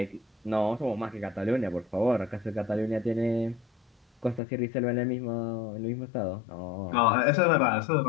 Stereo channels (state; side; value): drops out; right; at 4.4 s